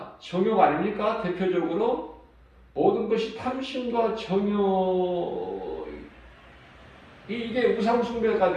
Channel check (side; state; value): both; identical; correlation 1.00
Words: 정욕 아닙니까? 대표적으로 모든 것이 탐심과 정욕 이게 우상숭배가